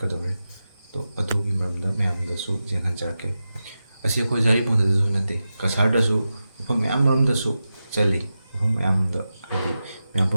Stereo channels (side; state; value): both; inverted; correlation -0.92